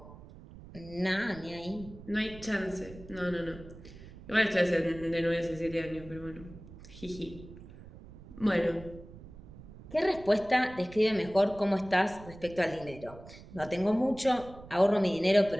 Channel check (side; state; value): right; noise; rumble, 17 dB below the sound